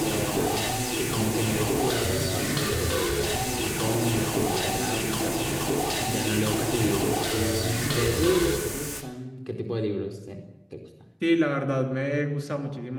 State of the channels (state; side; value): identical; both; correlation 1.00